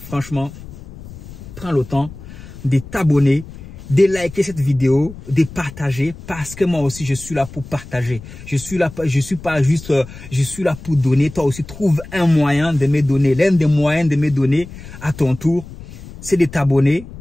prends le temps de t'abonner, de liker cette vidéo, de partager, parce que moi aussi je suis là pour partager. Je suis là pour donner. Toi aussi trouve un moyen de me donner. L'un des moyens de me donner à ton tour, c'est de t'abonner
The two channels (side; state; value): left; noise; rumble, 15 dB below the sound